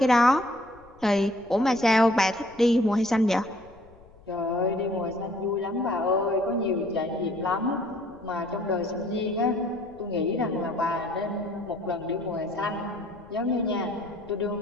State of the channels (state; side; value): noise; left; rumble, 26 dB below the sound